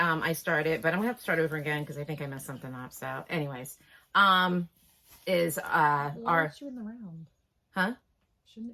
started, but I'm gonna have to start over again because I think I messed something up. So anyways, is our... you in the round? Huh? Shouldn't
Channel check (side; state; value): both; identical; correlation 1.00